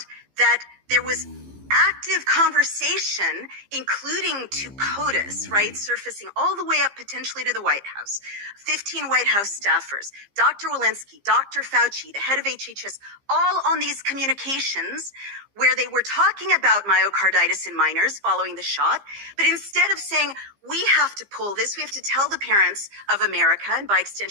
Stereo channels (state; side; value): late; left; 15 ms